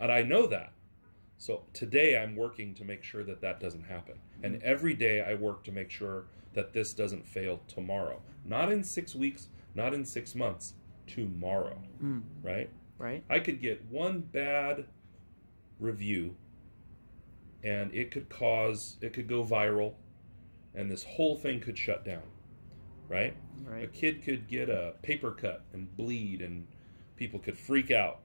I know that. So today I'm working to make sure that that doesn't happen. And every day I work to make sure that this doesn't fail tomorrow. Not in 6 weeks, not in 6 months, tomorrow. Right? Right. I could get one bad review and it could go viral, and this whole thing could shut down. Right? Right. A kid could get a paper cut and bleed and people could freak out,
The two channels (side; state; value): both; inverted; correlation -1.00